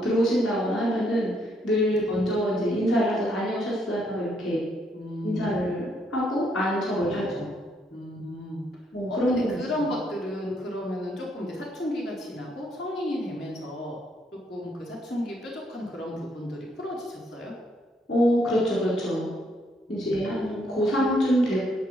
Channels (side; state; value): both; normal; correlation 0.72